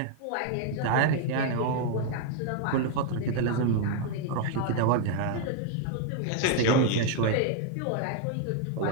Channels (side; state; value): both; different; correlation 0.00